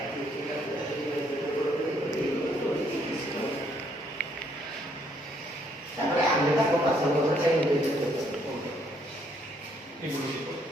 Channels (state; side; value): normal; both; correlation 0.69